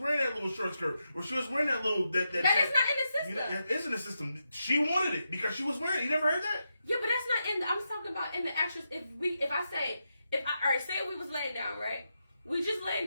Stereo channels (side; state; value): both; inverted; correlation -0.86